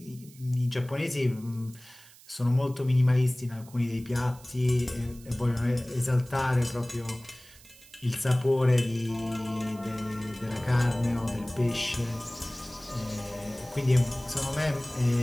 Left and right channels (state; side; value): noise; right; hiss, 23 dB below the sound